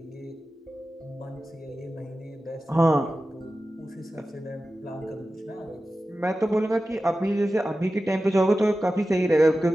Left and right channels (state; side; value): normal; both; correlation 0.94